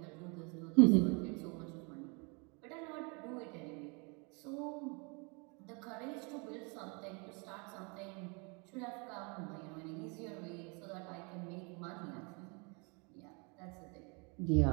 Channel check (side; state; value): left; quieter; 32.3 dB